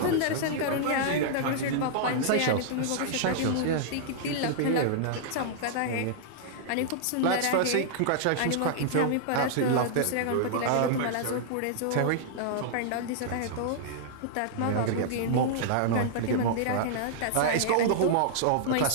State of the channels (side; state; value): both; different; correlation -0.01